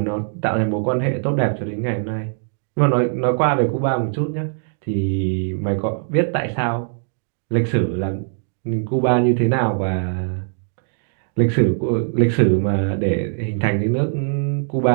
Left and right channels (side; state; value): left; silent; digital silence